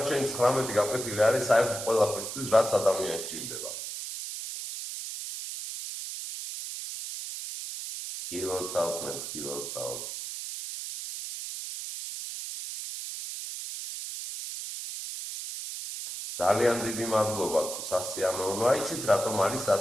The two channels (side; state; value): right; noise; hiss, 7 dB below the sound